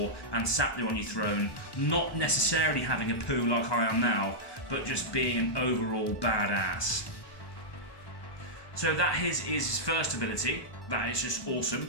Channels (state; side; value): late; right; 1.2 ms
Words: and sat there on your throne, not necessarily having a poo like I am now, but just being an overall badass. So that is his first ability. That is just awesome.